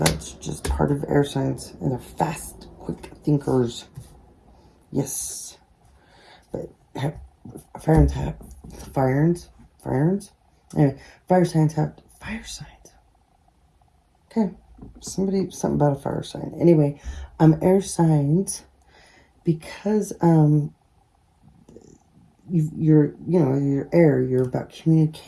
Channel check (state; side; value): identical; both; correlation 1.00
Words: just part of air signs, and they're fast, quick thinkers. Yes. But fire signs have fire signs. Okay. Something about a fire sign. Anyway, air signs, because you're air, you're about